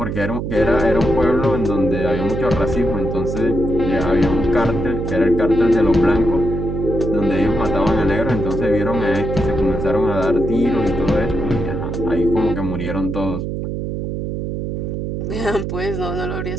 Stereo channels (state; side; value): noise; right; hum, 3 dB below the sound